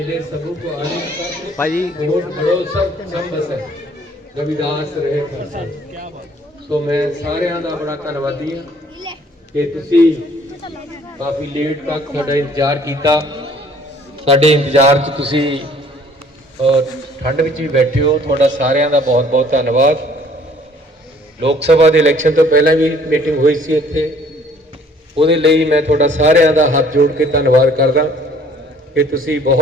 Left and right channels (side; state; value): both; normal; correlation 0.57